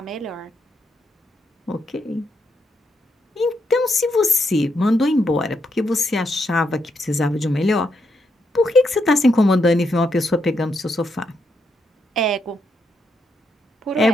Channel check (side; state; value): both; normal; correlation 0.80